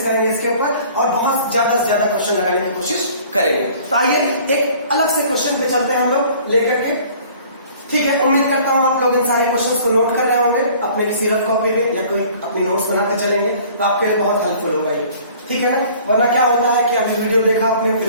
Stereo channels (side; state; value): both; inverted; correlation -0.51